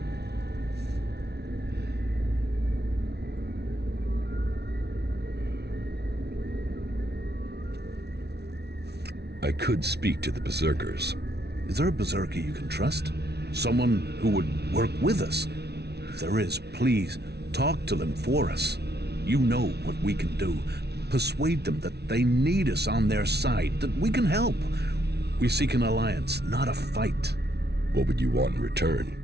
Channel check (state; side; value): late; left; 0.49 ms